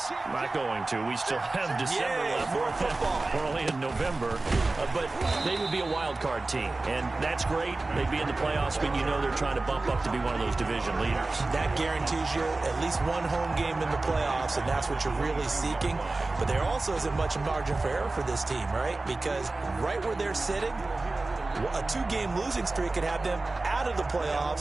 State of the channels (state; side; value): quieter; left; 3.2 dB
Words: not going to, we still have December left. More football. We're only in November. But they would be a wild card team, and that's great. They'd be in the playoffs, but they're trying to bump up to be one of those division leaders. That guarantees you at least one home game in the playoffs, and that's what you're really seeking. But there also isn't much margin for error for this team, right? Because right where they're sitting, a 2-game losing streak could have them out of the